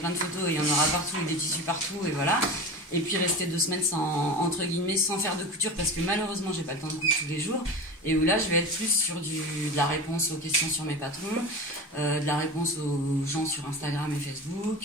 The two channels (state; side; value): normal; both; correlation 0.30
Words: de photos et il y en aura partout et des tissus partout et voilà. Et puis rester 2 semaines entre guillemets sans faire de couture parce que malheureusement j'ai pas le temps de coudre tous les jours. Et où là je vais être plus sur de la réponse aux questions sur mes patrons, de la réponse aux gens sur Instagram et